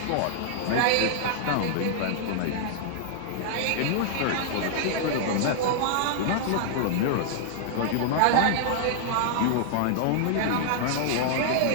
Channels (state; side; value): different; both; correlation -0.01